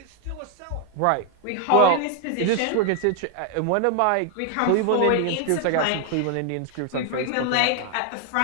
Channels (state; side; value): different; both; correlation 0.00